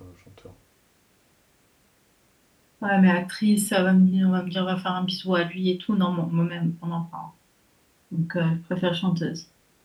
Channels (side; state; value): both; identical; correlation 1.00